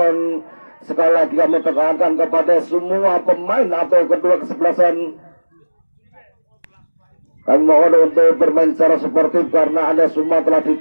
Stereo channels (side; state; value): both; inverted; correlation -1.00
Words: Sekali lagi kami tekankan kepada semua pemain atau kedua kesebelasan. Kami mohon untuk bermain secara sportif karena Anda semua telah